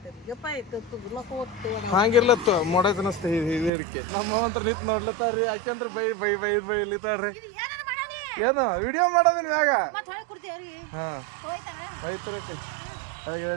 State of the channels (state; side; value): drops out; left; at 3.7 s